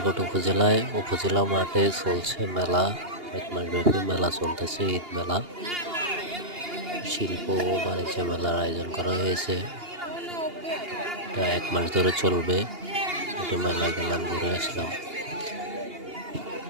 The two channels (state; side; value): late; left; 2.8 ms